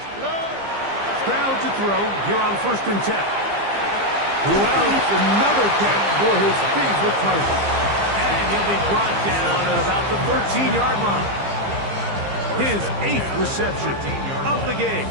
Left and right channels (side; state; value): left; late; 15 ms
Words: Stroud to throw here on 1st and 10. Who else? Another catch for his favorite target. And he'll be brought down at about the 13-yard line. His 8th reception of the game.